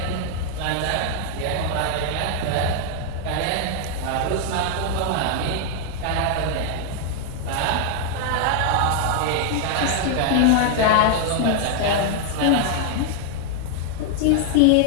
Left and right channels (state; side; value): different; both; correlation 0.00